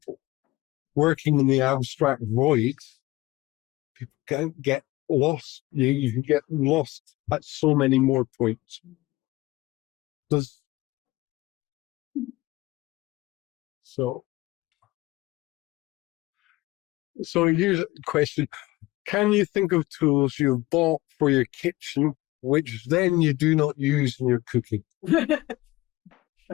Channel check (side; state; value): right; quieter; 19.6 dB